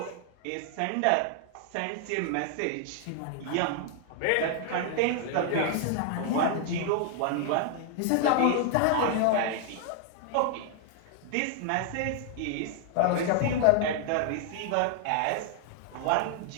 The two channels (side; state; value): both; different; correlation 0.00